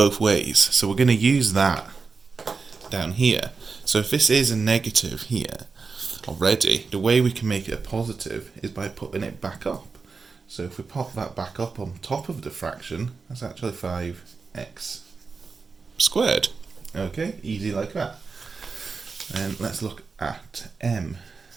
ways. So we're going to use that down here. So if this is a negative here already, the way we can make it a positive is by putting it back up. So if we pop that back up on top of the fraction, that's actually 5x squared. Okay, easy like that. And let's look at m.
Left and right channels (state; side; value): quieter; left; 4.7 dB